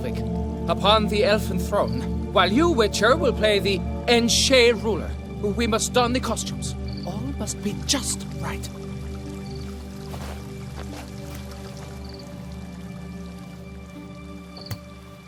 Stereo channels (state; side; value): identical; both; correlation 1.00